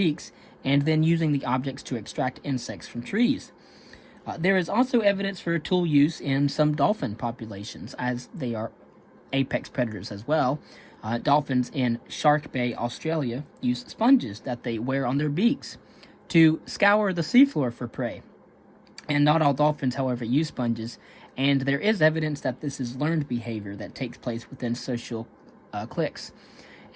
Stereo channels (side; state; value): both; identical; correlation 1.00